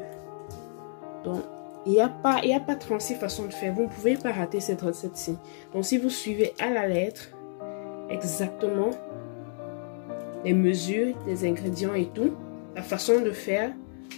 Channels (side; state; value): right; silent; digital silence